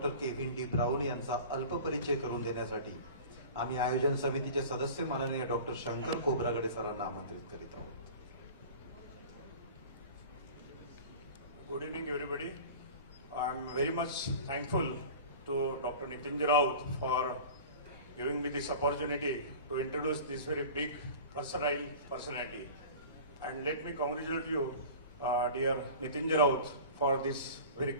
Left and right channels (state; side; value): inverted; both; correlation -0.38